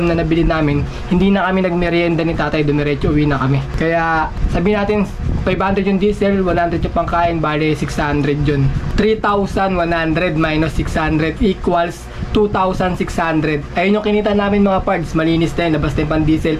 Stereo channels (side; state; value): both; identical; correlation 1.00